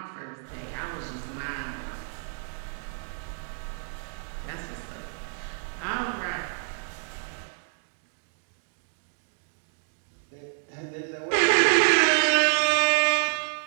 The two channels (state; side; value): silent; left; 59 dB below the other